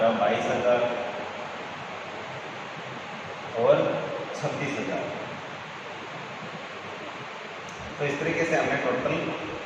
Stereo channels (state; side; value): identical; both; correlation 1.00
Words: 22,000 और 26,000। तो इस तरीके से हमने टोटल